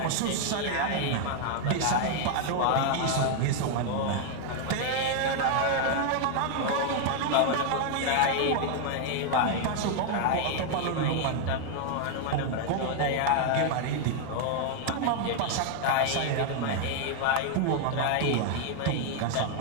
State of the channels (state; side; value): different; both; correlation 0.00